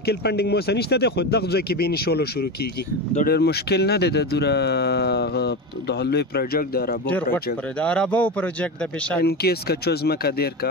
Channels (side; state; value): both; normal; correlation 0.21